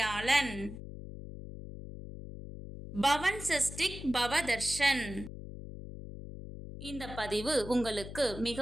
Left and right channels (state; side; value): noise; left; hum, 11 dB below the sound